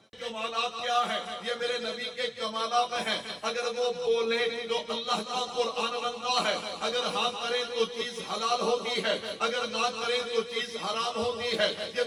کمالات کیا ہے؟ یہ میرے نبی کے کمالات ہیں۔ اگر وہ بولے تو اللہ کا قرآن بنتا ہے، اگر ہاں کرے تو چیز حلال ہوتی ہے، اگر نہ کرے تو چیز حرام ہوتی ہے۔ یہ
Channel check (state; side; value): identical; both; correlation 1.00